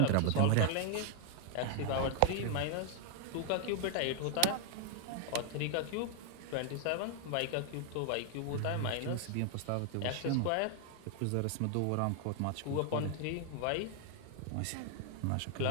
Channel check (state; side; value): different; both; correlation 0.00